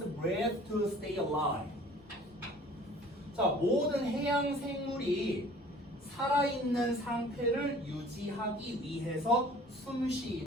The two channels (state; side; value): normal; both; correlation 0.49